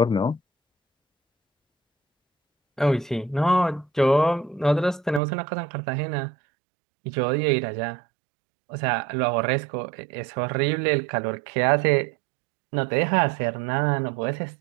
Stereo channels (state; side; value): drops out; left; at 5.2 s